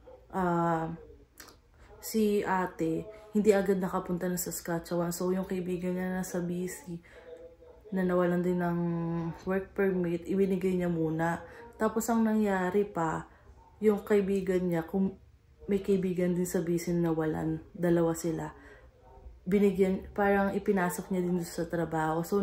si ate, hindi agad nakapunta ng Saskatchewan. So, yung kaibigan niya nasa BC, na nawalan din ng work permit, ibinigay niya muna. Tapos, ang nangyari pa, yung kaibigan niya, kung may kaibigan din sa BC na nawalan, dalawa sila, parang ipinasok niya din sa trabaho. So,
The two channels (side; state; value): both; identical; correlation 1.00